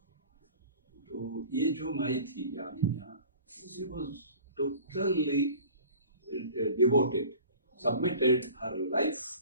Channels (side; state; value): both; inverted; correlation -0.43